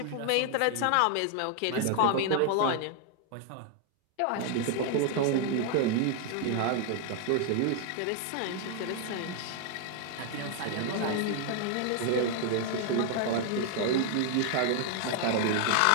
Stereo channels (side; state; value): both; different; correlation 0.00